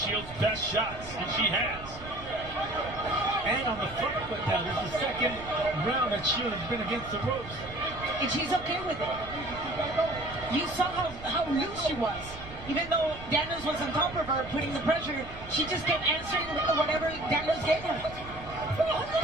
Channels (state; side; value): noise; right; rumble, 15 dB below the sound